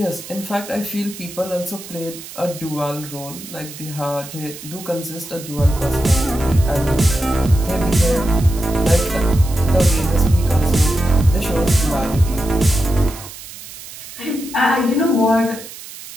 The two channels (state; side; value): noise; right; hiss, 14 dB below the sound